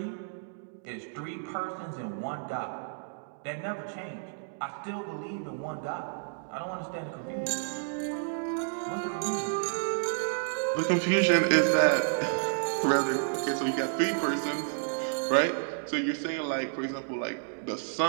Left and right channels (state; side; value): silent; left; digital silence